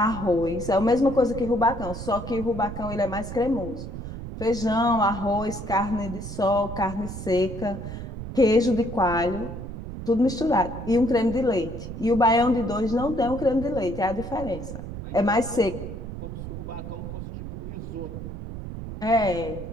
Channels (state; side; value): noise; right; rumble, 9 dB below the sound